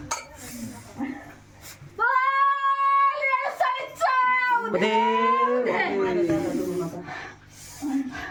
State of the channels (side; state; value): both; identical; correlation 1.00